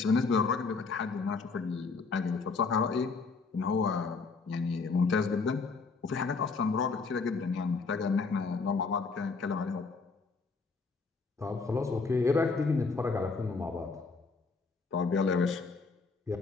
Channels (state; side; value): quieter; right; 4.5 dB